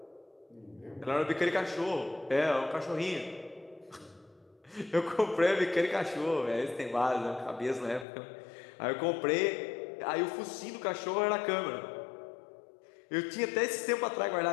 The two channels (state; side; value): drops out; right; at 8.1 s